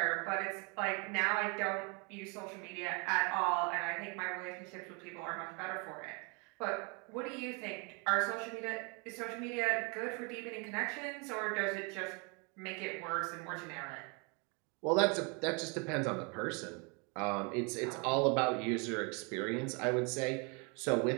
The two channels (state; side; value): quieter; left; 33.1 dB